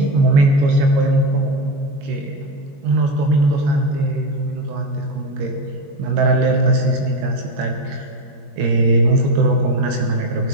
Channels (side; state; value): left; late; 22 ms